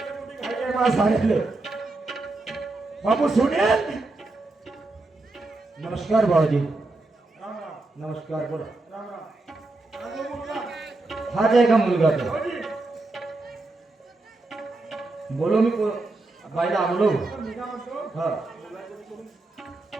मोठी घाई आहे मला सांगितले बाबू सुनेल नमस्कार बाबाजी राम राम नमस्कार बोला राम राम हाच आहे का मुलगा तो बोलो मी बाईला बोलो हा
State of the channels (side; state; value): left; quieter; 3.1 dB